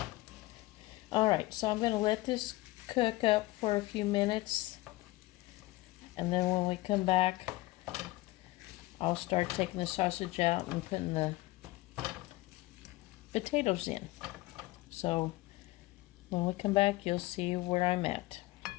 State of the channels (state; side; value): quieter; right; 19.5 dB